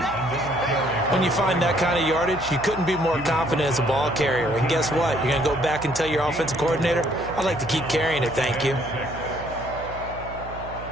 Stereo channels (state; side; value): noise; right; hum, 13 dB below the sound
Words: When you find that kind of yardage, you couldn't be more confident as a ball carrier. And guess what? You're going to go back and tell your offensive coordinator, I'd like to keep carrying it, thank you.